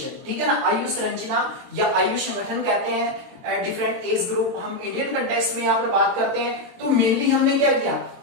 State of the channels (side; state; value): left; late; 22 ms